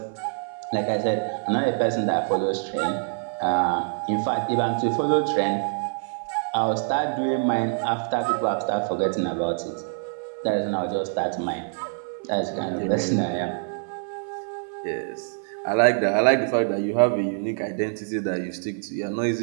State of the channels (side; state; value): left; silent; 62 dB below the other